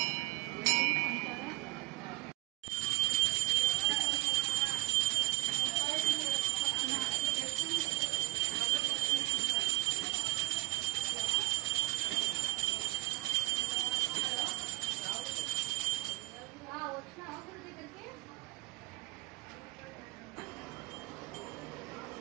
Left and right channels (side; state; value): left; quieter; 22.2 dB